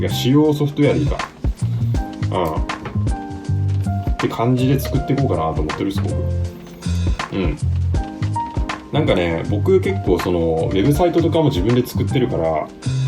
か使用ソフトウェアでいいかって感じで作っていこうかなと思ってるんです僕。なんかね、僕結構そのウェブサイトとかも自分で作ってるから、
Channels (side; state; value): both; identical; correlation 1.00